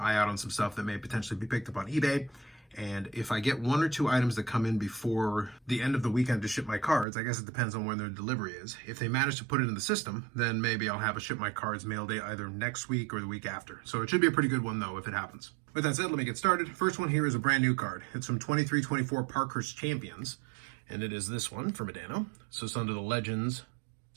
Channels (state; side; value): drops out; left; at 7.1 s